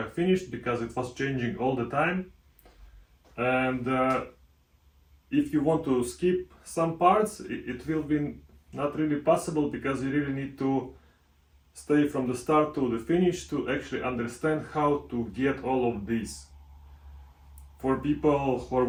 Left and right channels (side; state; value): both; identical; correlation 1.00